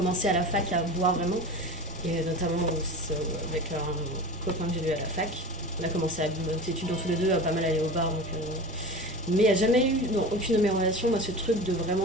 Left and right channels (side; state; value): both; normal; correlation 0.31